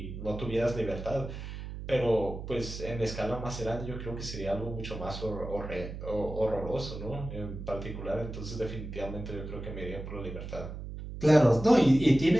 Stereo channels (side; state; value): right; noise; hum, 9 dB below the sound